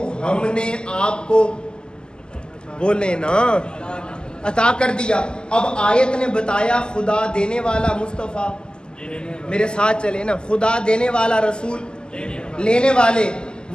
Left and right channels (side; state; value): right; late; 0.047 ms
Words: ہم نے آپ کو بولے نا عطا کر دیا۔ اب آیت نے بتایا خدا دینے والا مصطفیٰ، میرے ساتھ چلے نا، خدا دینے والا رسول لینے والے،